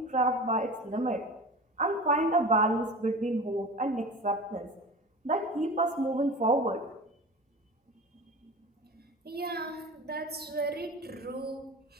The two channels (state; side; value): normal; both; correlation 0.34